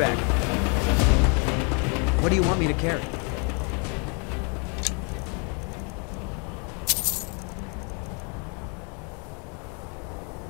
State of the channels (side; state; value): right; quieter; 35.9 dB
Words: What do you want me to carry?